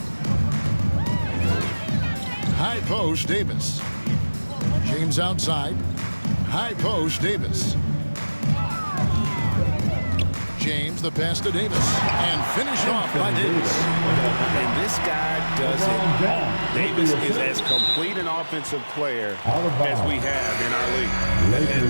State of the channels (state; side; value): inverted; both; correlation -1.00